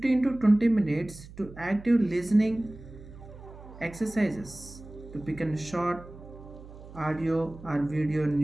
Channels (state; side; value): noise; right; hum, 17 dB below the sound